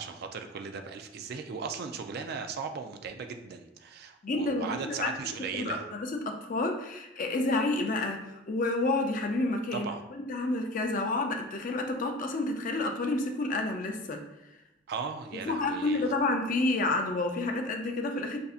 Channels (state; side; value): normal; both; correlation 0.35